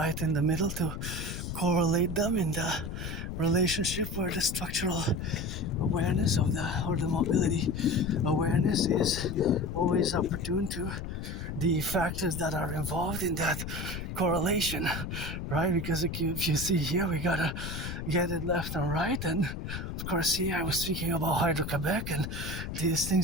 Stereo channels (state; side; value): noise; left; rumble, 6 dB below the sound